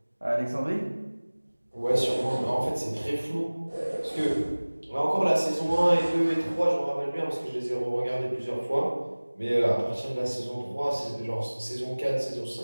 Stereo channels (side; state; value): both; inverted; correlation -1.00